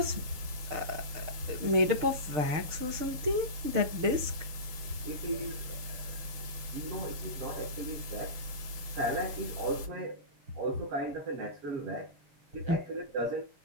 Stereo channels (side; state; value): left; late; 6.6 ms